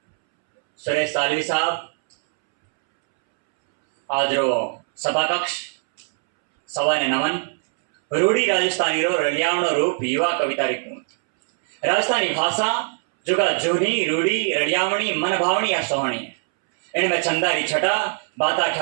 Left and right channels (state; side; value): silent; left; 65 dB below the other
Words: सुरेश सालवी साहब आज रो सभा कक्ष सवा ने नमन। रूढ़ी राजस्थानी रो रलियावणो रूप युवा कविता रिकूंत राजस्थानी भाषा जुगा जूनी रूढ़ी रलियावणी मन भावनी या सोहणी है। इनमें चंदारी छटा बाता